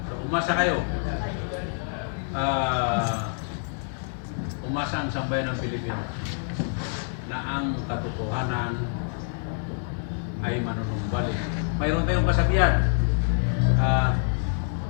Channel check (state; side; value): silent; right; 60 dB below the other